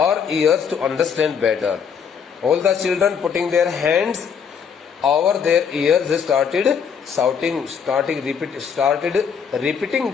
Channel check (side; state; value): right; quieter; 6.9 dB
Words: ears to understand better. All the children putting their hands over their ears started